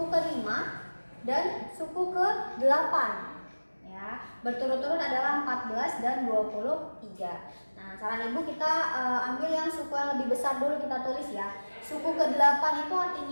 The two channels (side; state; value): both; inverted; correlation -1.00